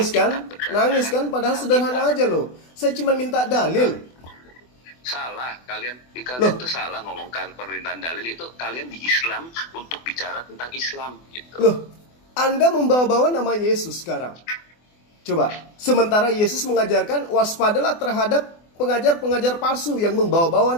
kan? Alkitab berdasarkan Nangis kan? Padahal sederhana aja loh. Saya cuma minta dalil. Salah, kalian Loh. itu salah ngomongkan permintaan dalil itu. Kalian di Islam untuk bicara tentang Islam gitu. Loh, Anda membawa-bawa nama Yesus sekarang. Coba, sementara Yesus mengajarkan waspadalah terhadap pengajar-pengajar palsu yang membawa-bawa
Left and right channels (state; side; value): late; right; 24 ms